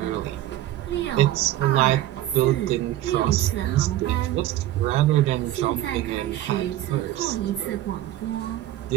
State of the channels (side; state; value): left; quieter; 14.0 dB